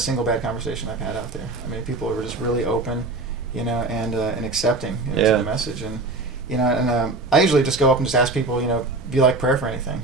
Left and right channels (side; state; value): left; quieter; 3.3 dB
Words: bad conversation I've had out there. I mean, people are just really open, and accepting to the message, and I usually just go up and just ask people, do you like prayer for anything?